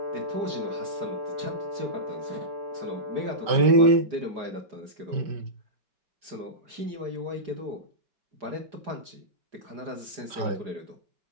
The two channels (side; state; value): left; late; 4.9 ms